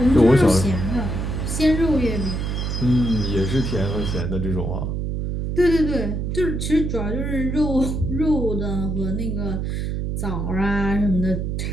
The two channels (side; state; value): right; noise; hum, 2 dB below the sound